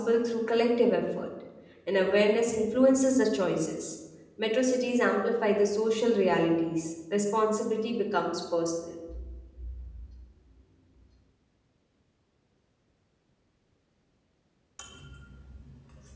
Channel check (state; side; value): identical; both; correlation 1.00